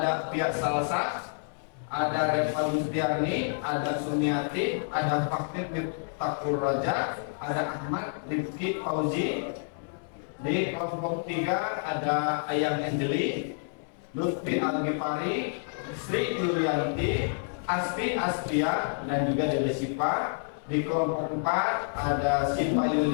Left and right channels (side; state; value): right; silent; 59 dB below the other